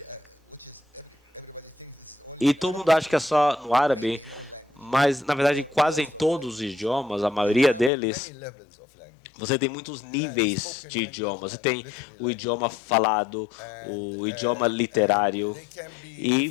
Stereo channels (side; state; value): right; drops out; at 7.9 s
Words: e todo mundo acha que é só no árabe, mas, na verdade, quase em todos os idiomas, a maioria deles, você tem muitos níveis de idiomas. Você tem o idioma falado, o idioma literário,